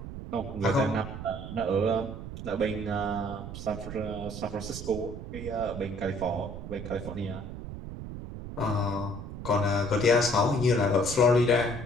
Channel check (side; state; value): right; noise; rumble, 9 dB below the sound